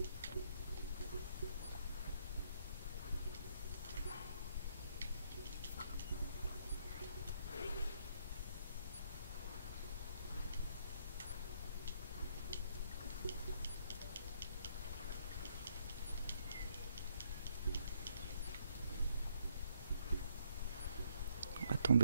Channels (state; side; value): inverted; both; correlation -0.71